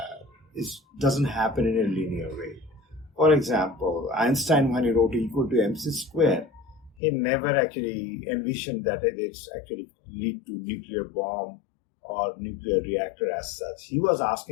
doesn't happen in a linear way. For example, Einstein, when he wrote E equal to mc square, he never actually envisioned that it's actually lead to nuclear bomb or nuclear reactor as such. He was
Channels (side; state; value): right; drops out; at 7.0 s